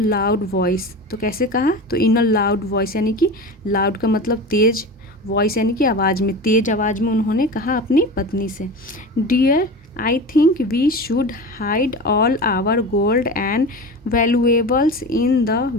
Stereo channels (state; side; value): normal; both; correlation 0.30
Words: वॉइस, तो कैसे कहा, तो इन अ लाउड वॉइस यानी कि लाउड का मतलब तेज, वॉइस यानी कि आवाज़ में, तेज आवाज़ में उन्होंने कहा अपनी पत्नी से, dear I think we should hide all our gold and valuables in the